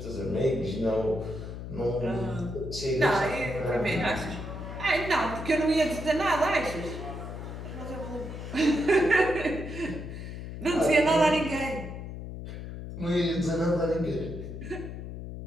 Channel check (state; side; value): noise; left; hum, 9 dB below the sound